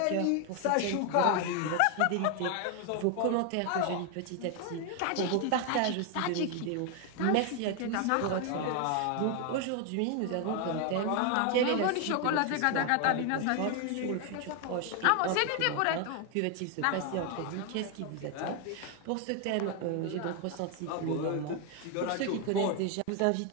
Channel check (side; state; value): both; different; correlation 0.01